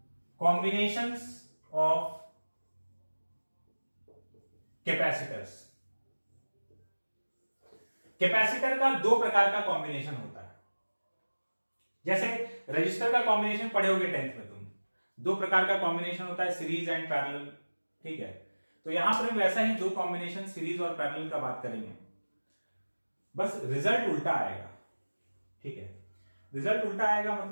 कॉम्बिनेशंस ऑफ कैपेसिटर्स। कैपेसिटर का 2 प्रकार का कॉम्बिनेशन होता है। जैसे रजिस्टर का कॉम्बिनेशन पढ़े होगे 10th में तुम, 2 प्रकार का कॉम्बिनेशन होता है, सीरीज एंड पैरेलल। ठीक है, तो यहां पर वैसा ही 2 कॉम्बिनेशन सीरीज और पैरेलल का बात करेंगे, बस रिजल्ट उल्टा आएगा। ठीक है, रिजल्ट उल्टा आएगा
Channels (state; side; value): inverted; both; correlation -1.00